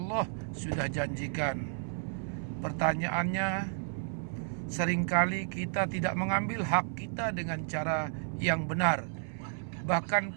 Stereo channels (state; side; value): silent; left; 56 dB below the other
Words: sudah janjikan. Pertanyaannya, seringkali kita tidak mengambil hak kita dengan cara yang benar. Bahkan